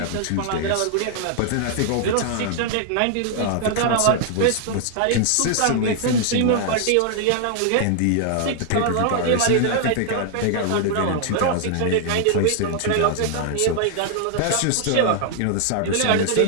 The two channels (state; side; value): different; both; correlation 0.00